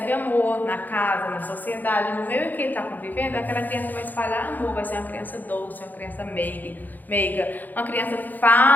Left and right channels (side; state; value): right; late; 0.085 ms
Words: amor na casa, na sociedade, no meio em que ele está convivendo, aquela criança vai espalhar amor, vai ser uma criança doce, uma criança meiga, uma criança